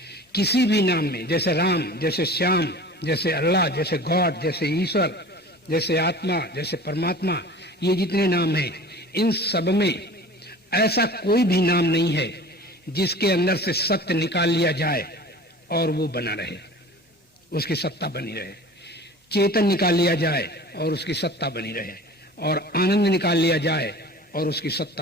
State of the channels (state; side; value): normal; both; correlation 0.40